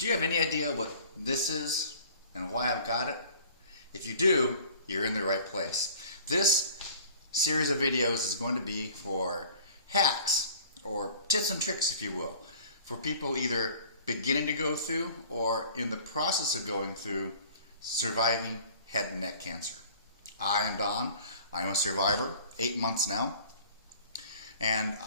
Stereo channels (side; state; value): both; inverted; correlation -0.48